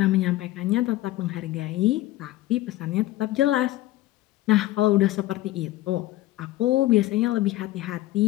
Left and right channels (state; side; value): quieter; right; 16.4 dB